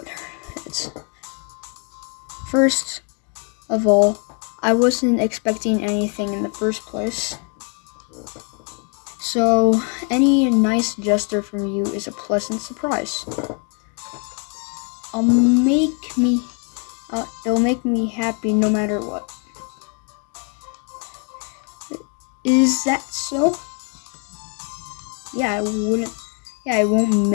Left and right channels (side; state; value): right; quieter; 38.7 dB